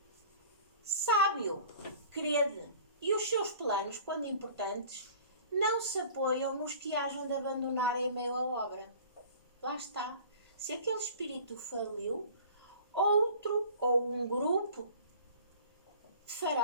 Sabe-o, crede, e os seus planos, quando importantes, não se apoiam nos que hajam de abandonar em meio à obra. Lá está. Se aquele espírito faliu, outro ou um grupo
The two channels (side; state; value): both; inverted; correlation -0.46